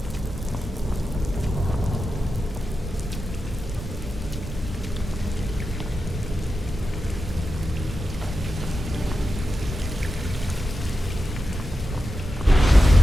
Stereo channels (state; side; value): normal; both; correlation 0.90